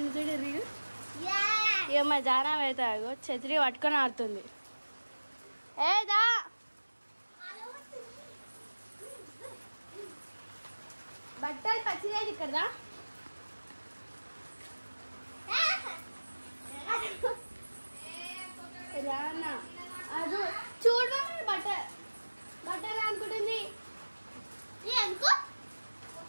చూడండి. ఇక మా జానం అయితే ఛత్రి పట్టుకొని ఆడుతుంది. ఏదా బట్టలు పచ్చిలేదు ఇక్కడ రానా అది చూడ బట్టలు అనుకుంటుంది.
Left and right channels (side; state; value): both; inverted; correlation -1.00